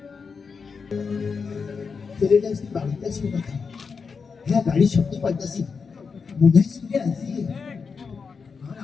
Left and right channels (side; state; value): right; quieter; 5.4 dB